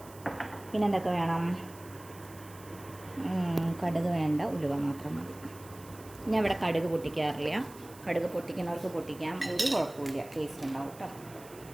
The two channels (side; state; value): right; noise; hiss, 20 dB below the sound